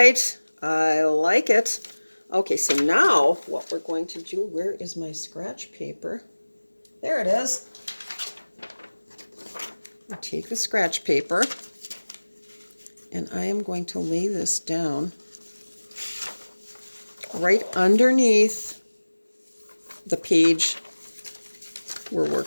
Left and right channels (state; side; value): inverted; both; correlation -1.00